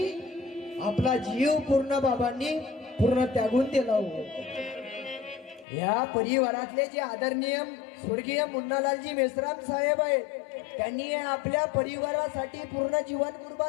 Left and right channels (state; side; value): drops out; right; at 5.7 s